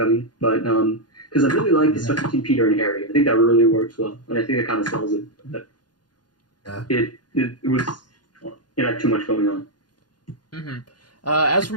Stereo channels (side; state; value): right; late; 0.70 ms